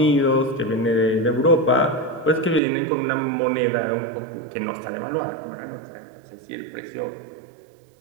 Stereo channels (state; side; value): drops out; left; at 2.6 s